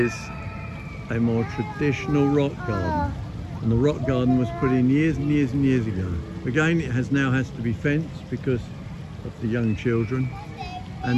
a more traditional rock garden, and the rock garden was put in years and years and years ago. Again, it now has to be fenced because of the young children,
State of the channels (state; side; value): identical; both; correlation 1.00